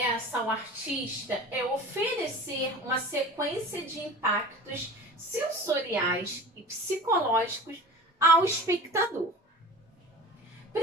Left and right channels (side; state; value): both; normal; correlation 0.38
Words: ao artista é oferecer uma sequência de impactos sensoriais e psicológicos ao espectador,